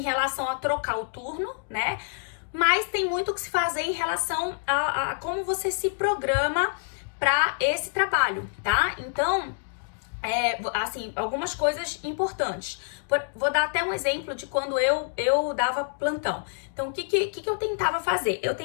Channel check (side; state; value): right; silent; digital silence